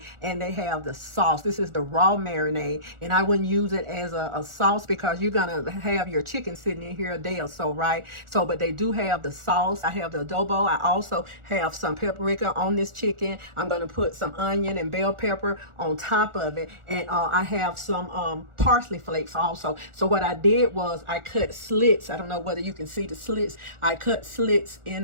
and they have the sauce. This is the raw marinade, and I wouldn't use it as a sauce because you're gonna have your chicken sitting in here a day or so, right? So, but they do have the sauce. I have the adobo. I also have some paprika on this chicken. I'm gonna put some onion and bell pepper on top of it, and I have some parsley flakes also. So what I did was I cut slits. I don't know whether you can see the slits. I cut slits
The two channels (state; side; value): late; left; 1.4 ms